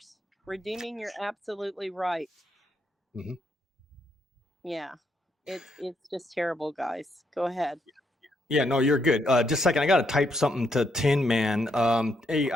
Redeeming, you're absolutely right. Yeah, it's just terrible, guys. Go ahead. Yeah, no, you're good. Just a second, I got to type something to Tin Man. Hey,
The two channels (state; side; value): normal; both; correlation 0.76